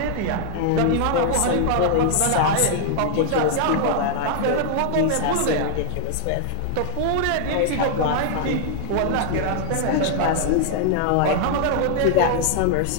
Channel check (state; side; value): different; both; correlation 0.00